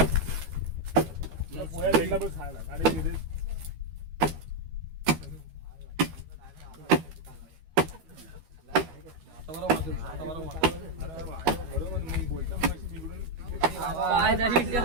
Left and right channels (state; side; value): late; left; 13 ms